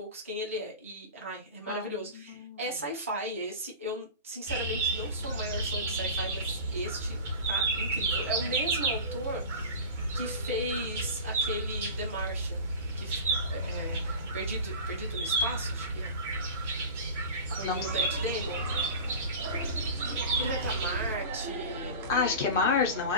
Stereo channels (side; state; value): both; inverted; correlation -0.33